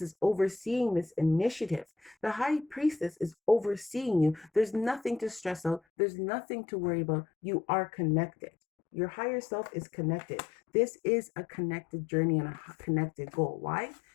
is overseeing this initiative. The High Priestess is overseeing you. There's nothing to stress out. There's nothing to worry about. You are connected. Your higher self is connected. This is a connected journey and a connected goal. Why?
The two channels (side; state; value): right; drops out; at 5.8 s